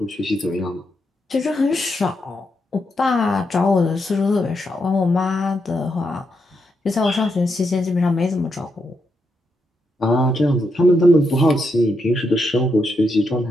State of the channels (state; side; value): normal; both; correlation 0.82